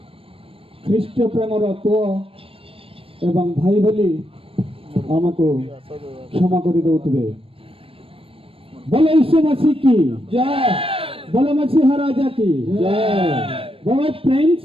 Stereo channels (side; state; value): left; late; 0.27 ms